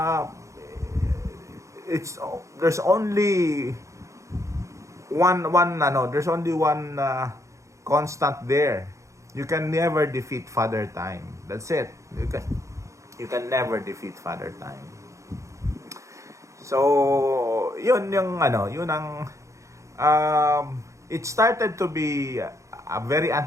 there's only one constant there. You can never defeat father time. That's it. You can never defeat father time. So, yun ang it started to be a very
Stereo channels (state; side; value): late; left; 0.15 ms